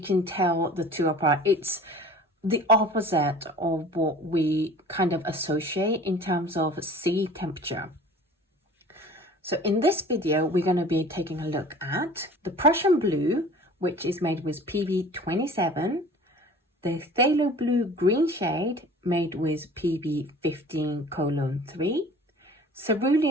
tell the two apart. It's the opposite of what we kind of associate in terms of sea temperature. So in this video, we're going to be taking a look at the Prussian Blue, which is made with PB27, the Phthalo Blue green shade made with PB15:3,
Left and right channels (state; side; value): normal; both; correlation 0.44